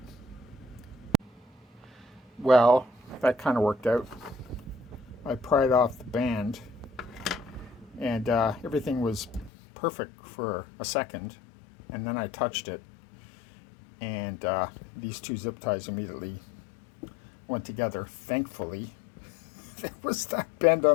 Well, that kind of worked out. I pried off the band and everything was perfect for a second, and then I touched it and these two zip ties immediately went together. Thankfully, there was that bend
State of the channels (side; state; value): right; drops out; at 9.5 s